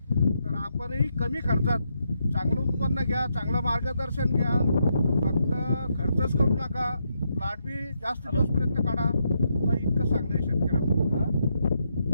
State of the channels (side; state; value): both; inverted; correlation -0.80